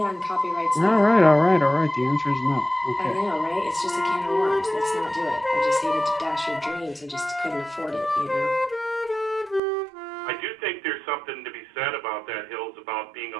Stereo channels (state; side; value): drops out; left; at 9.6 s